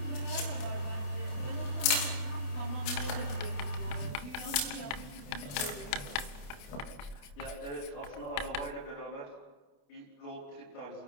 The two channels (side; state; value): right; late; 28 ms